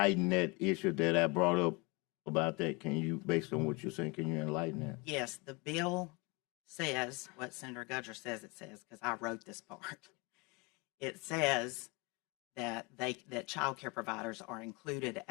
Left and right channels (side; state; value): right; quieter; 27.2 dB